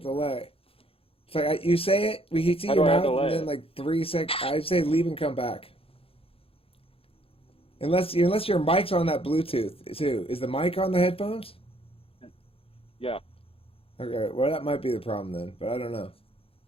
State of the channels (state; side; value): late; right; 0.27 ms